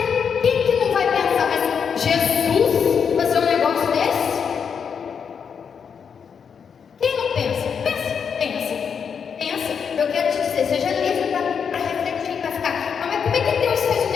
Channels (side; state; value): right; quieter; 6.8 dB